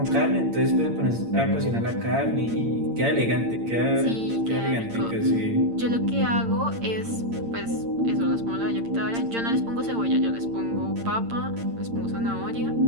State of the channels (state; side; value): late; left; 8.8 ms